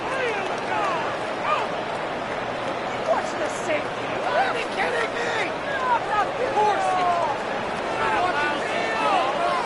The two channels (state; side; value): identical; both; correlation 1.00